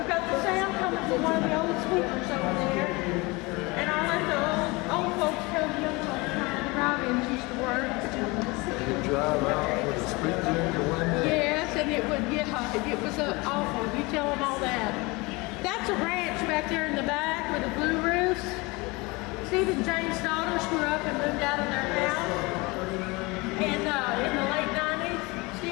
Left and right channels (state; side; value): quieter; right; 24.9 dB